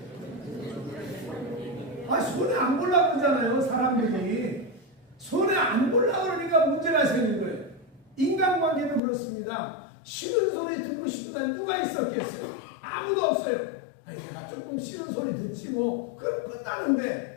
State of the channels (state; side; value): drops out; right; at 9.0 s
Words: 손해 안 보려고 그러잖아요. 사람들이 손해 안 보려고 그러니까 문제가 생긴 거예요. 인간관계도 그렇습니다. 싫은 소리 듣고 싶은 사람 누가 있었겠어요? 아무도 없어요. 내가 조금 싫은 소리 듣지 뭐 그럼